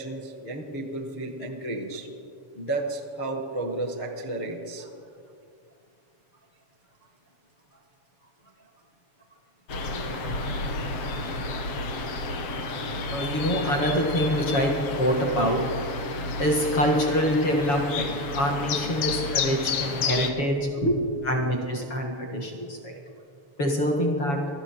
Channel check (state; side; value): late; right; 7.1 ms